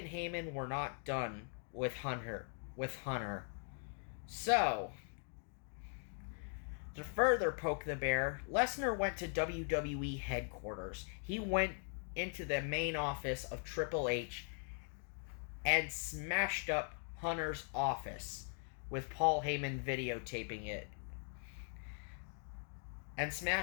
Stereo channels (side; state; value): right; silent; 51 dB below the other